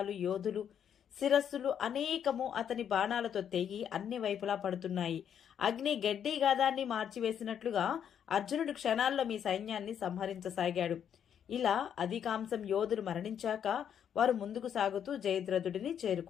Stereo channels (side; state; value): right; quieter; 8.8 dB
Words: యోధులు, శిరస్సులు అనేకము అతని బాణాలతో తెగి అన్ని వైపులా పడుతున్నాయి. అగ్ని గడ్డి గాదాన్ని మార్చివేసినట్లుగా అర్జునుడు క్షణాల్లో మీ సైన్యాన్ని సంహరించసాగాడు. ఇలా అధికాంశం యోధులు మరణించాక వారు ముందుకు సాగుతూ జయద్రథుడిని